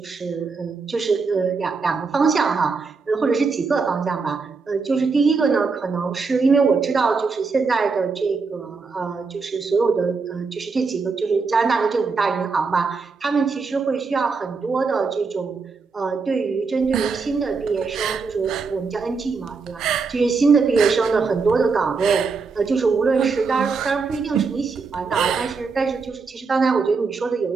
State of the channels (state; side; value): quieter; left; 4.7 dB